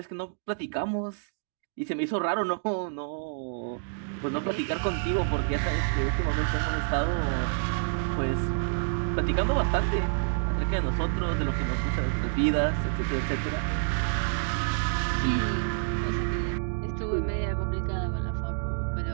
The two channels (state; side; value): silent; left; digital silence